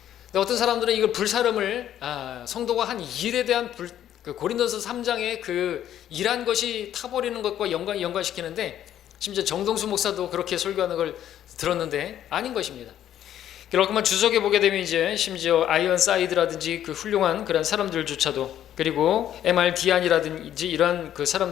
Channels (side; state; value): right; quieter; 11.1 dB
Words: 근데 어떤 사람들은 이걸 불사름을 성도가 한 일에 대한 그 고린도서 3장의 그 일한 것이 타버리는 것과 연관시키는데 심지어 정동수 목사도 그렇게 설교하는 걸 들었는데 아닌 것입니다. 그렇구만 주석에 보게 되면 이제 심지어 아이언사이드라든지 그 훌륭한 그런 사람들조차도 그리고 MRD안이라든지 이러한 그